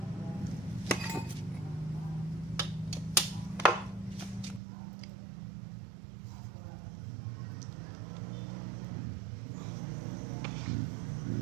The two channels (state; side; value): drops out; left; at 4.6 s